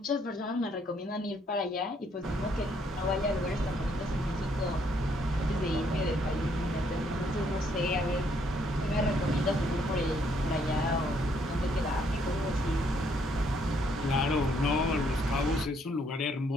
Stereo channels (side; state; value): both; normal; correlation 0.69